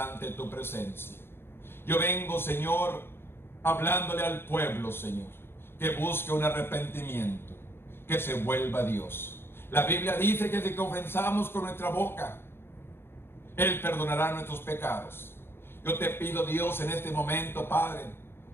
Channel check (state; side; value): late; right; 0.11 ms